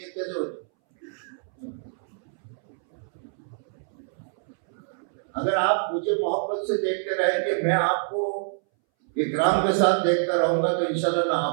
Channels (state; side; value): silent; left; 61 dB below the other